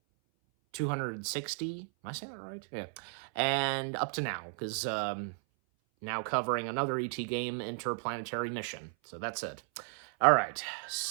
260, am I saying that right? Yeah. And up to now, because, now covering another E.T. game, Interplanetary Mission. So that's it. Alright,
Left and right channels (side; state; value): left; silent; 55 dB below the other